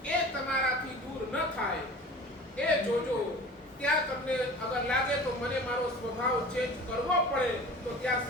એ તમારાથી દૂર ન થાય એ જોજો. ત્યાં તમને અગર લાગે તો મને મારો સ્વભાવ ચેન્જ કરવો પડે તો ત્યાં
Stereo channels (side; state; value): both; normal; correlation 0.40